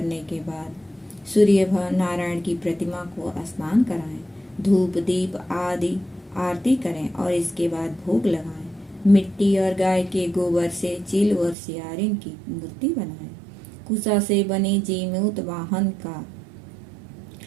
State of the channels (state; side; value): drops out; left; at 11.6 s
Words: के बाद सूर्य नारायण की प्रतिमा को स्नान कराएं, धूप दीप आदि आरती करें और इसके बाद भोग लगाएं। मिट्टी और गाय के गोबर से चील और सियारिन की मूर्ति बनाएं। कुसा से बने जीमूत वाहन का